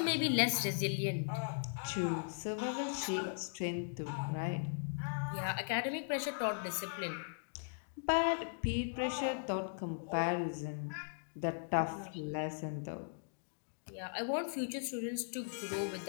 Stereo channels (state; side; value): silent; right; digital silence